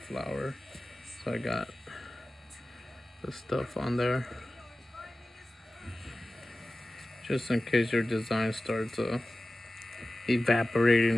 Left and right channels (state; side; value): normal; both; correlation 0.96